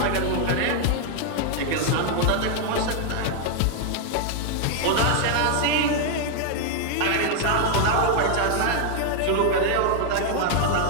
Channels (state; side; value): different; both; correlation 0.00